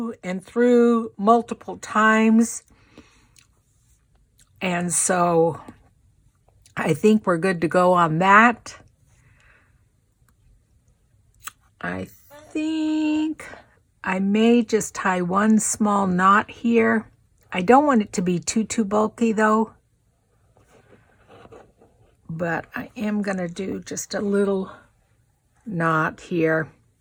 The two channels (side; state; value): both; identical; correlation 1.00